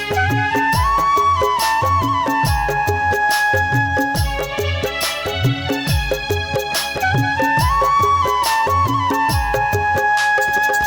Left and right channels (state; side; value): identical; both; correlation 1.00